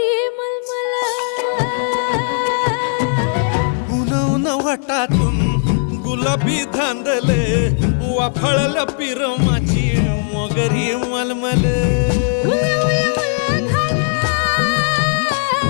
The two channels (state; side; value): silent; right; 61 dB below the other